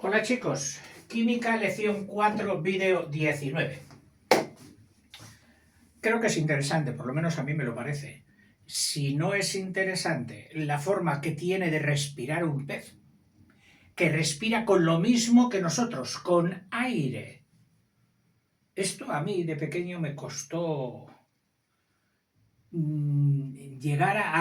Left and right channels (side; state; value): both; identical; correlation 1.00